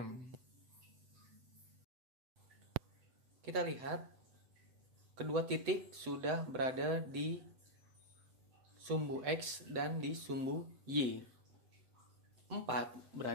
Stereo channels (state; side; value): late; left; 7.9 ms